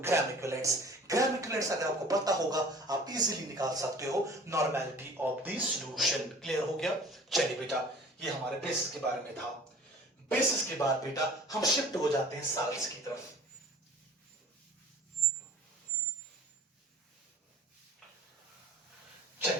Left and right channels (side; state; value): both; normal; correlation 0.46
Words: इक्विवेलेंट्स। ग्राम इक्विवेलेंट्स अगर आपको पता होगा आप इजीली निकाल सकते हो normality of the solution. Clear हो गया? चलिए बेटा ये हमारे बेसिस के बारे में था। बेसिस के बाद बेटा हम शिफ्ट हो जाते हैं साल्ट्स की तरफ।